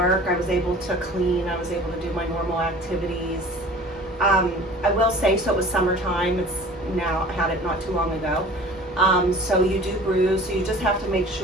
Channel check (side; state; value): both; normal; correlation 0.44